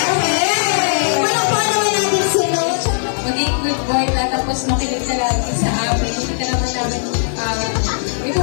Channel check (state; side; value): silent; right; digital silence